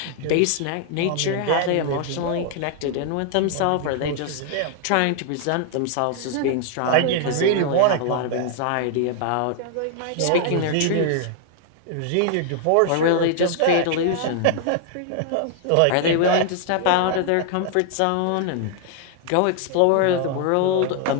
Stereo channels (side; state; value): both; different; correlation 0.00